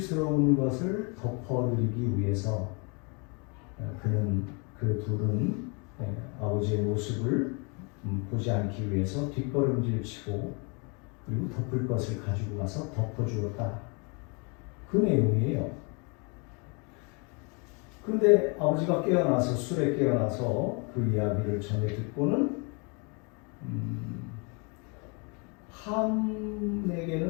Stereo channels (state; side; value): quieter; right; 33.4 dB